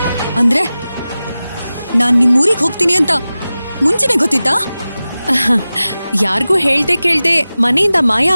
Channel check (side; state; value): both; inverted; correlation -0.96